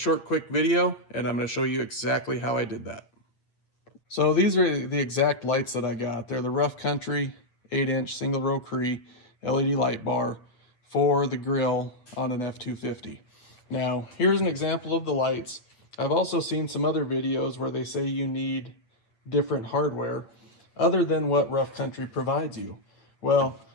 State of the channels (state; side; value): late; right; 8.7 ms